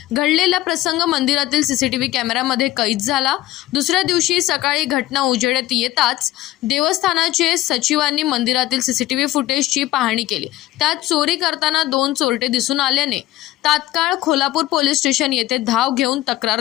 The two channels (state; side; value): quieter; right; 15.6 dB